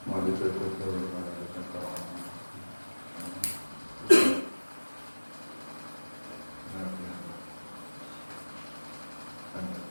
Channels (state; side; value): inverted; both; correlation -1.00